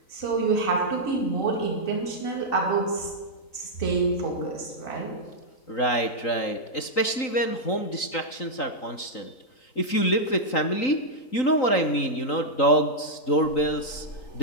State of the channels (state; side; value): late; right; 3.8 ms